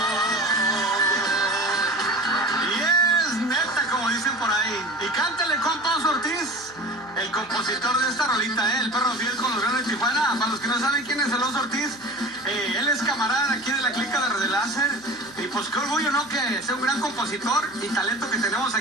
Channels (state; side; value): noise; right; hum, 25 dB below the sound